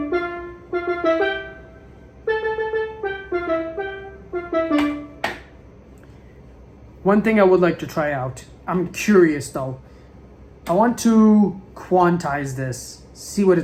One thing I would like to try out, I'm curious though, I want to quantize this, see what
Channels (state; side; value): identical; both; correlation 1.00